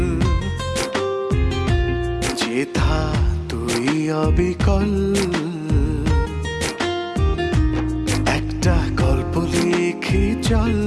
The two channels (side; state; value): both; identical; correlation 1.00